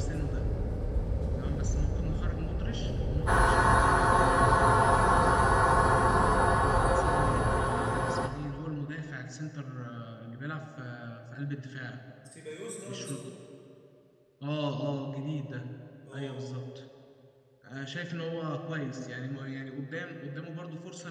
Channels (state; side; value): identical; both; correlation 1.00